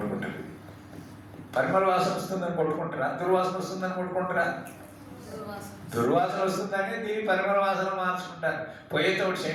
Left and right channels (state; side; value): identical; both; correlation 1.00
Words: పరిమళ వాసన వస్తుందని కొట్టుకుంటారా? దుర్వాసన వస్తుందని కొట్టుకుంటారా? దుర్వాసన వస్తుందని దీని పరిమళ వాసన మార్చుకుంటారు. పోయేతోటి